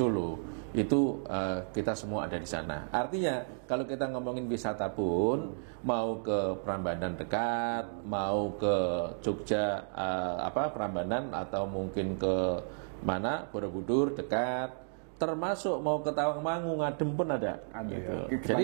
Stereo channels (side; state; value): left; silent; digital silence